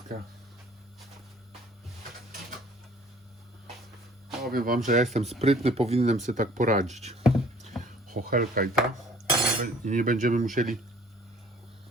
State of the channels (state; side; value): normal; both; correlation 0.53